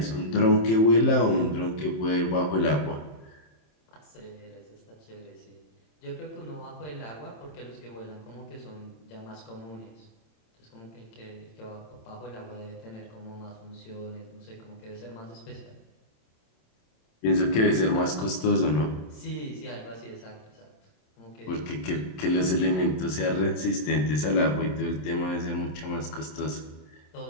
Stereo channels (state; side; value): late; right; 27 ms